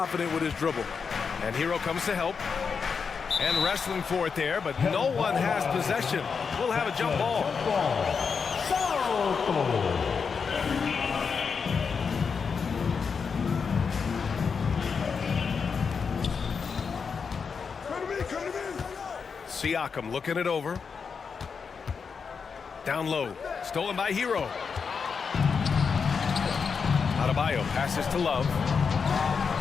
with his dribble. And Hero comes to help. And wrestling for it there, but no one has possession. We'll have a jump ball. Siakam looking it over. Down low. Stolen by Hero. Adebayo passes to Love.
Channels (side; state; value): right; quieter; 5.8 dB